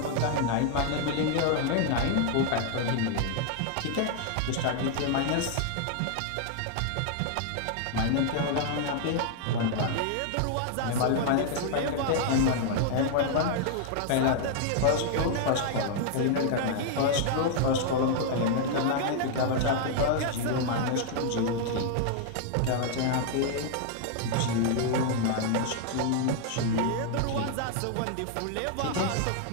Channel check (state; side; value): different; both; correlation 0.00